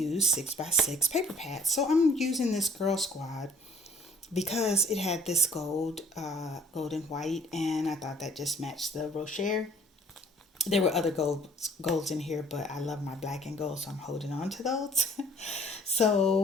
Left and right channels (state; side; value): normal; both; correlation 0.57